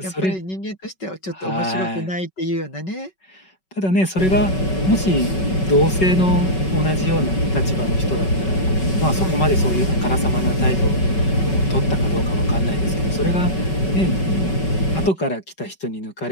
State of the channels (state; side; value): late; right; 5.3 ms